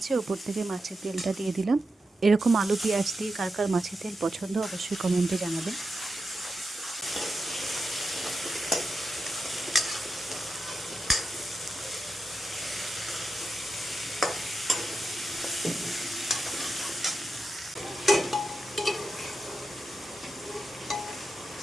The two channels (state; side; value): normal; both; correlation 0.89